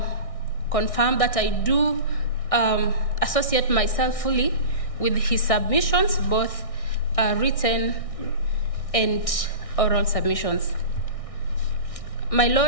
confirm that I do associate myself fully with his submissions, both written and oral submissions. My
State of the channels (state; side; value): late; right; 1.6 ms